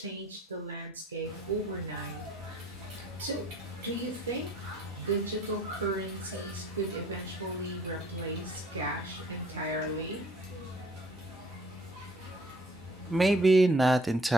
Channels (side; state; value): both; normal; correlation 0.58